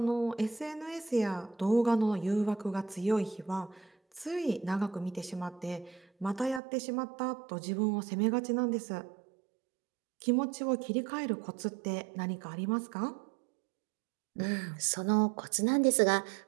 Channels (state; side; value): drops out; left; at 6.6 s